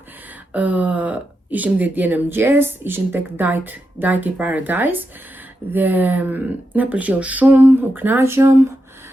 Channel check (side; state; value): both; normal; correlation 0.87